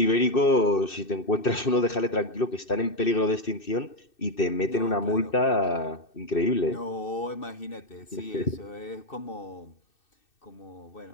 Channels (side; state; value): right; late; 2.6 ms